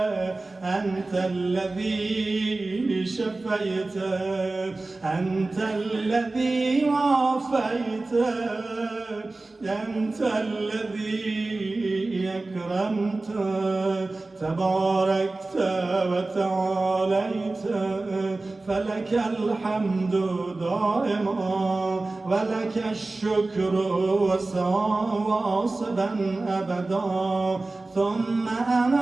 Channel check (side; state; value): left; quieter; 3.2 dB